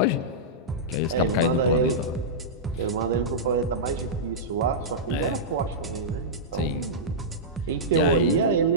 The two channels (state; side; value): normal; both; correlation -0.12